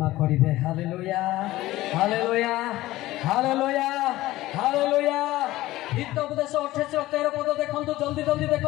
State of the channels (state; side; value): quieter; right; 16.8 dB